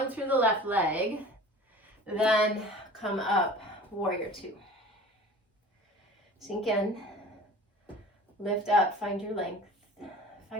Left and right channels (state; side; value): normal; both; correlation 0.41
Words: through the left leg. Then come up, warrior two. Sink in, lift up, find your length,